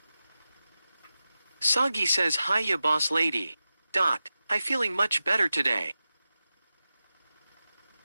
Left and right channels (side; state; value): both; inverted; correlation -0.93